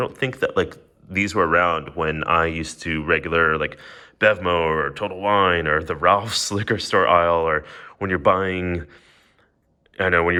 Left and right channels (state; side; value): identical; both; correlation 1.00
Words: think that like these were around when I used to regular like Bevmo or Total Wine or the Ralph's liquor store aisle, or when you're buying, I know, when